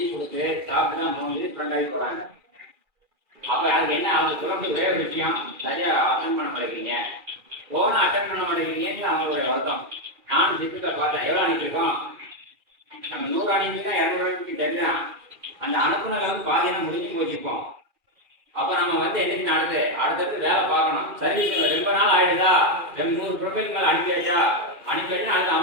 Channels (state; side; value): late; left; 2.4 ms